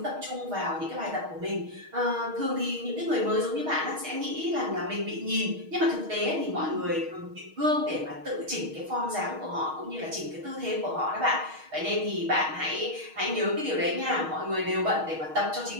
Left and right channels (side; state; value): left; late; 6.4 ms